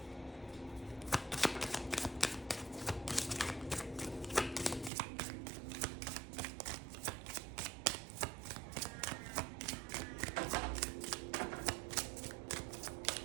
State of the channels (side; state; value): left; drops out; at 4.9 s